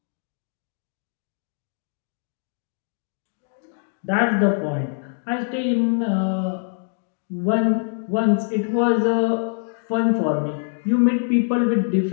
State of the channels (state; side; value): silent; right; digital silence